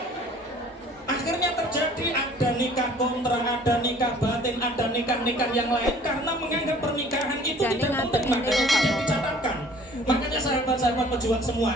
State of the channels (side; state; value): both; normal; correlation 0.52